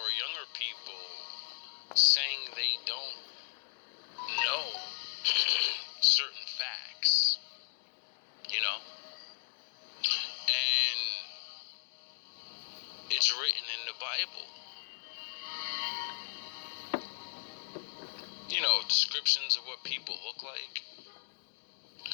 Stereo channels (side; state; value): right; silent; digital silence